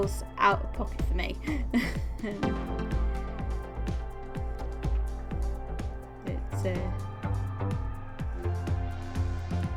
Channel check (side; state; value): both; identical; correlation 1.00